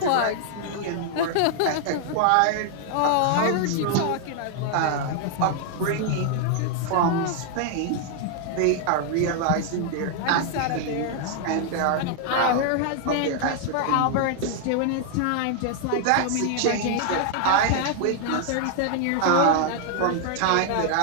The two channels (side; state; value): both; different; correlation 0.00